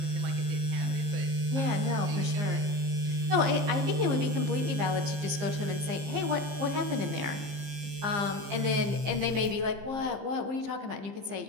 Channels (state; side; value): late; left; 15 ms